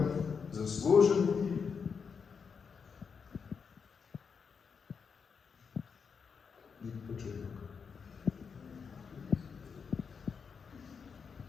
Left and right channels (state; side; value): quieter; right; 6.0 dB